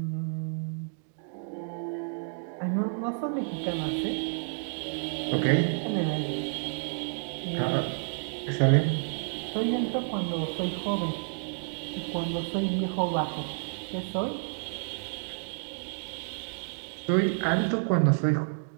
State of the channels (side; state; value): left; silent; digital silence